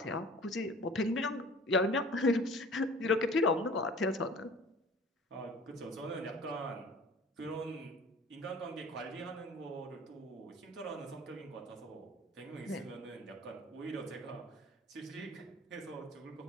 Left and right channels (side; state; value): both; normal; correlation 0.46